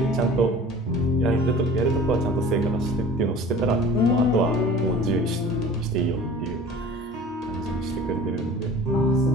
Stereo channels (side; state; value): both; normal; correlation 0.43